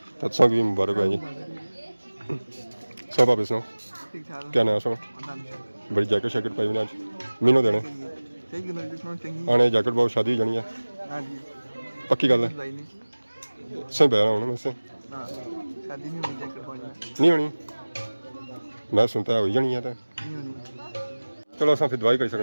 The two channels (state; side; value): inverted; both; correlation -1.00